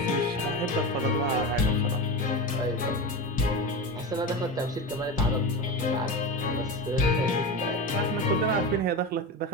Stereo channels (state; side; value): normal; both; correlation 0.23